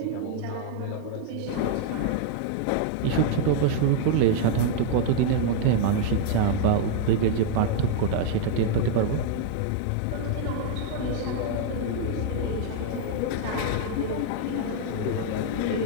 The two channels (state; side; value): different; both; correlation 0.00